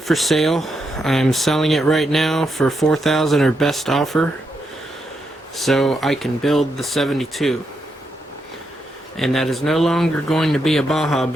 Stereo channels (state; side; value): normal; both; correlation 0.82